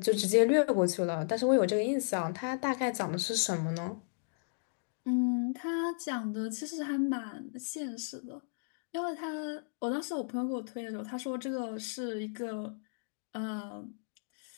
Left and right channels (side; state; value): right; silent; digital silence